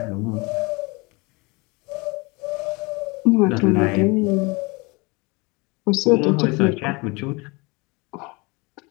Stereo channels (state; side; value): quieter; right; 26.7 dB